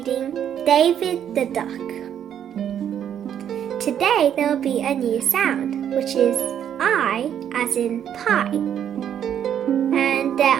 David the Duck. Today there will be a new sound, which is I as in pie. And there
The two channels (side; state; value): left; quieter; 9.4 dB